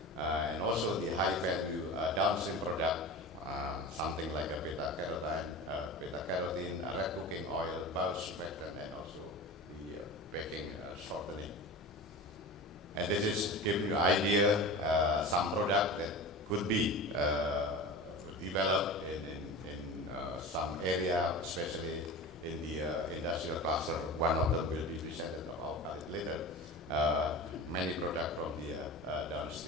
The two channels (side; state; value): both; normal; correlation 0.32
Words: and also the high value downstream product, something like a beta-carotene, red cooking oil, bulk surfactant, and also the baking shortening. And this is to give you an idea, some product that could be developed in some area, especially in the industrial cluster. One of them will be presented about later. Many products from the